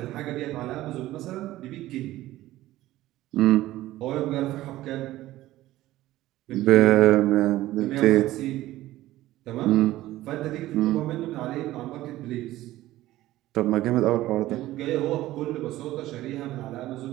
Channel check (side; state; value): left; quieter; 15.8 dB